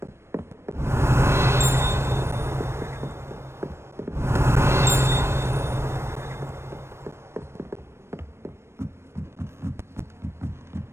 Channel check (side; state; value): left; late; 0.13 ms